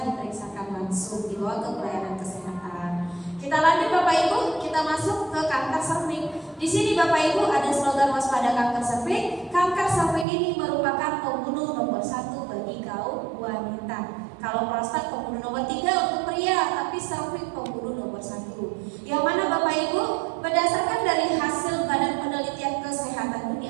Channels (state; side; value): drops out; left; at 10.2 s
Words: diperiksakan langsung, dibawa ke pelayanan kesehatan. Kita lanjut Bapak Ibu, kita masuk ke kanker cervix. Di sini Bapak Ibu ada slogan waspada kanker cervix. Kanker cervix ini merupakan pembunuh nomor 1 bagi kaum wanita. Kalau prostat pembunuh nomor 3 untuk pria, tapi cervix pembunuh nomor 1. Yang mana Bapak Ibu, berdasarkan dari hasil Badan Penelitian Kesehatan